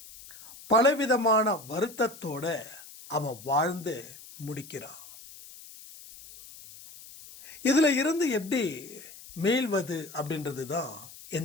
பலவிதமான வருத்தத்தோட அவன் வாழ்ந்து முடிக்கிறான். இதுல இருந்து எப்படி மீள்வது அப்படின்றது தான்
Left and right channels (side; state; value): left; noise; hiss, 18 dB below the sound